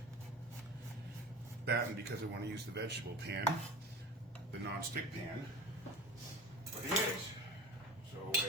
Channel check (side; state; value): both; normal; correlation 0.35